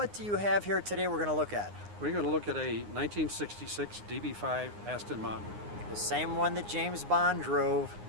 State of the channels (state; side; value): late; left; 9.7 ms